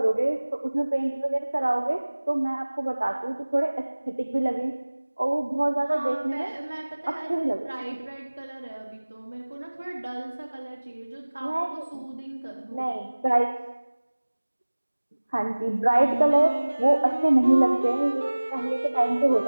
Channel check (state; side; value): inverted; both; correlation -1.00